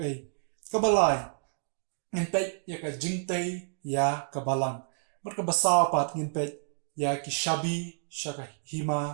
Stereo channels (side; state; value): left; silent; digital silence